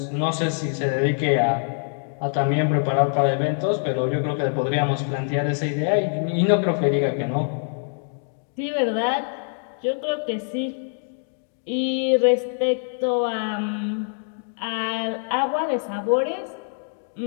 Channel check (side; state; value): right; silent; digital silence